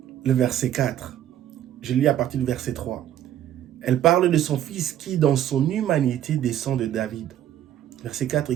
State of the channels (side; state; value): left; quieter; 11.3 dB